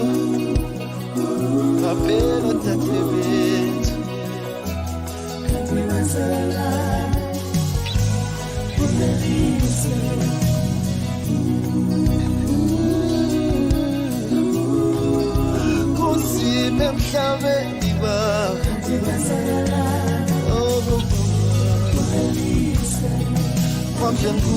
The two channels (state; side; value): identical; both; correlation 1.00